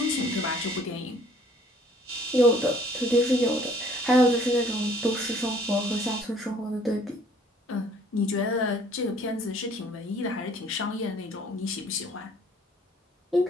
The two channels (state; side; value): normal; both; correlation 0.57